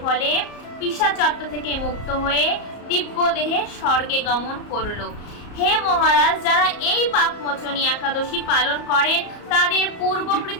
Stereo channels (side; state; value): right; late; 34 ms